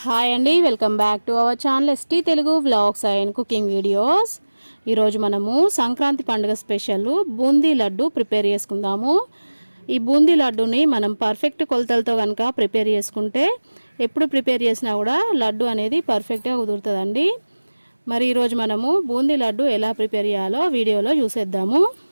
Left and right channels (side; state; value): both; inverted; correlation -1.00